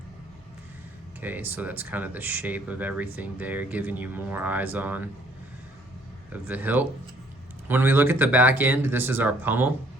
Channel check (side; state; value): both; normal; correlation 0.61